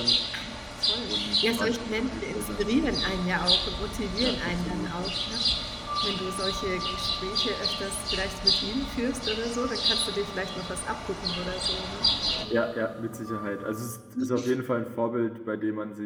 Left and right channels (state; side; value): identical; both; correlation 1.00